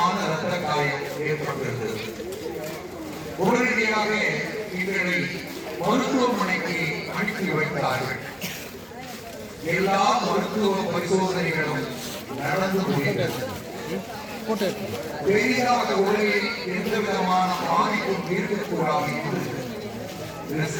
இரத்த காயம் ஏற்பட்டிருந்தது. உடனடியாக எங்களை மருத்துவமனைக்கு அனுப்பி வைத்தார்கள். எல்லா மருத்துவ பரிசோதனைகளும் நடந்து முடிந்தது. பெரிதாக உலகில் எந்த விதமான பாதிப்பும் இருக்கக்கூடாது என்று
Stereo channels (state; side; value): identical; both; correlation 1.00